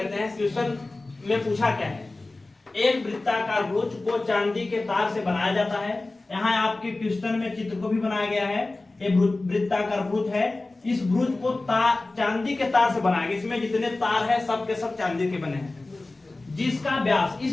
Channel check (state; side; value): quieter; right; 3.1 dB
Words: हैं। क्वेश्चन में पूछा क्या है, एक वृत्ताकार भुज को चांदी के तार से बनाया जाता है। यहाँ आपके क्वेश्चन में चित्र को भी बनाया गया है। ये वृत्ताकार भुज है, इस भुज को चांदी के तार से बनाया गया। इसमें जितने तार है सब के सब चांदी के बने हैं, जिसका व्यास,